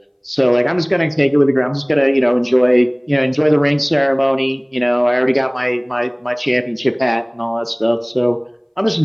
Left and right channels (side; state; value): both; identical; correlation 1.00